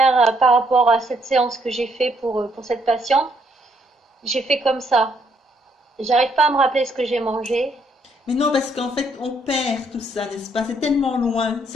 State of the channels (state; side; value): normal; both; correlation 0.71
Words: par rapport à cette séance que j'ai fait pour cette patiente, j'ai fait comme ça. J'arrive pas à me rappeler ce que j'ai mangé. Mais non, parce qu'en fait, on perd tout ça, n'est-ce pas? C'est tellement loin.